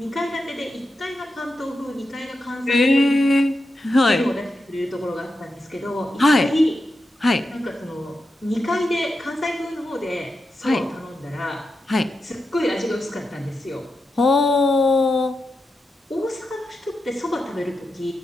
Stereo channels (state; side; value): normal; both; correlation 0.88